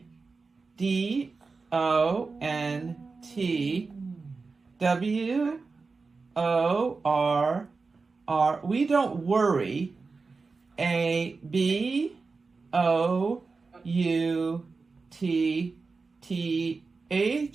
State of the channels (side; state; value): left; quieter; 4.3 dB